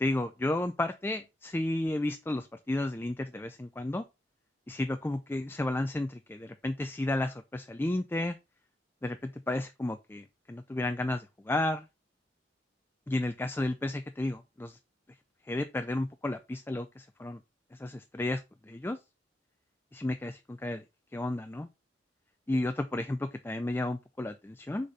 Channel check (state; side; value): normal; both; correlation 0.85